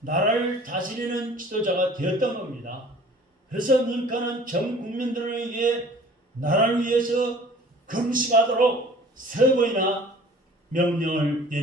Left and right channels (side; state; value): both; normal; correlation 0.49